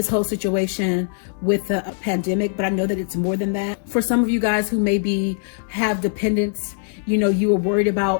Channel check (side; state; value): right; silent; 64 dB below the other